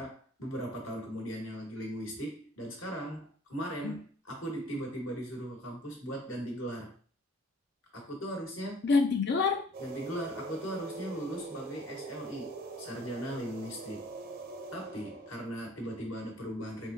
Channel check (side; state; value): both; normal; correlation 0.56